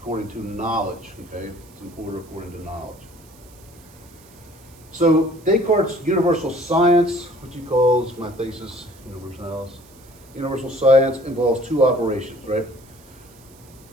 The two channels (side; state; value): right; noise; hiss, 26 dB below the sound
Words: to knowledge, okay? It's an order according to knowledge. So Descartes' universal science, which he calls my thesis universalis, universal science involves two operations, right?